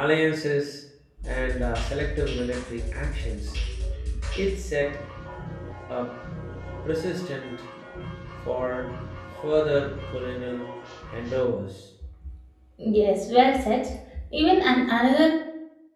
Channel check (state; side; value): identical; both; correlation 1.00